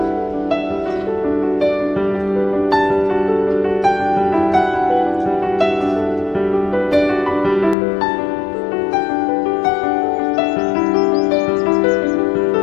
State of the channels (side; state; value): right; drops out; at 7.8 s